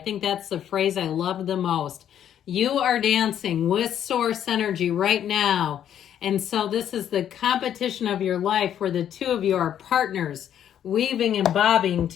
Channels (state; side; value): quieter; right; 10.0 dB